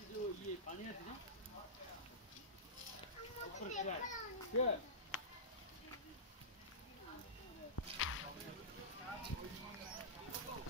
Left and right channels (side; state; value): both; normal; correlation -0.17